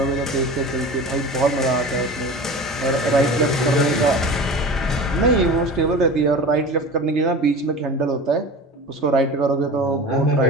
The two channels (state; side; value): normal; both; correlation 0.34